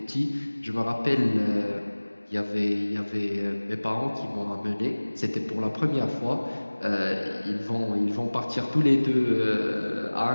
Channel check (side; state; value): both; inverted; correlation -1.00